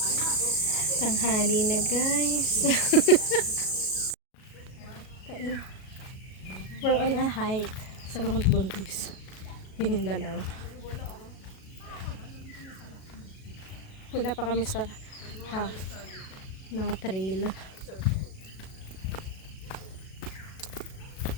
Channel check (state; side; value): late; right; 37 ms